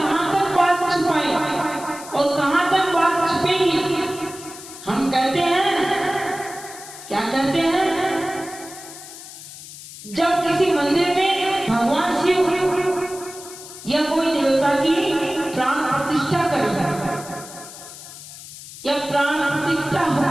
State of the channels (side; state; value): left; noise; hiss, 15 dB below the sound